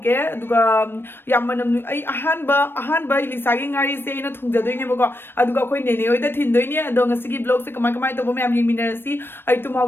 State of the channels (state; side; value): late; right; 0.10 ms